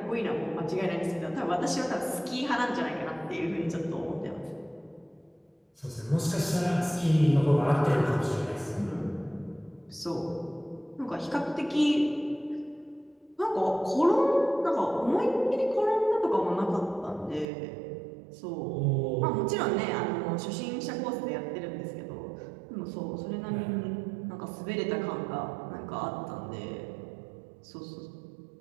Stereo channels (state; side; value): drops out; left; at 17.4 s